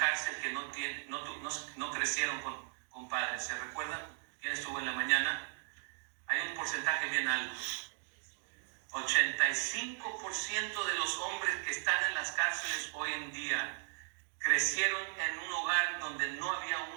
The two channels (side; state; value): left; silent; 53 dB below the other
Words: que no crecieron con padres. ¿Se recuerdan? ¿Quién estuvo en la mañana? Hay un porcentaje bien alto. 85% de los hombres que están en las cárceles hoy en día crecieron en un hogar donde no había